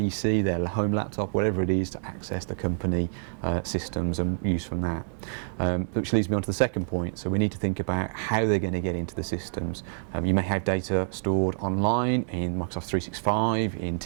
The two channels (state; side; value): silent; left; digital silence